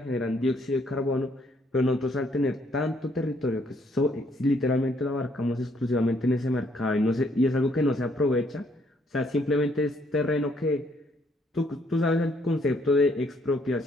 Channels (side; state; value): both; normal; correlation 0.69